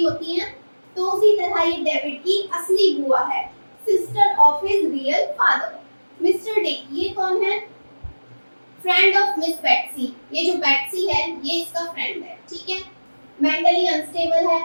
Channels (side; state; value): both; inverted; correlation -1.00